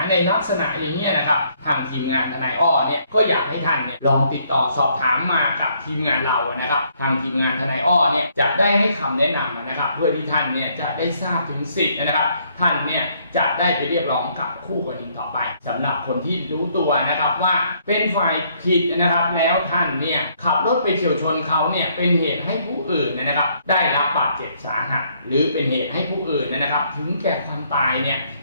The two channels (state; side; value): inverted; both; correlation -0.68